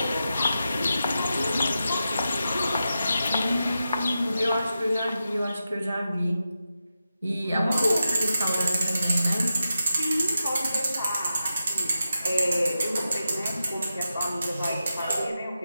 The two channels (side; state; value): both; inverted; correlation -0.89